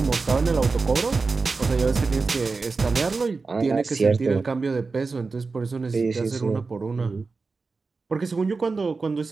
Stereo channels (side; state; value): left; quieter; 4.2 dB